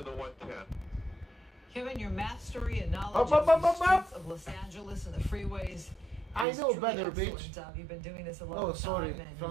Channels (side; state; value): left; drops out; at 6.5 s